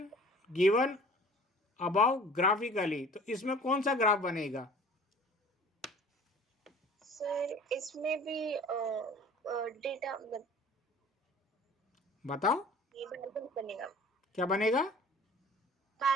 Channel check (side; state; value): both; normal; correlation 0.47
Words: given about graphically. तो इसमें कौन सा ग्राफ बनेगा? सर इसमें भी डेटा बताओ ये बार बनेगा। क्या बनेगा?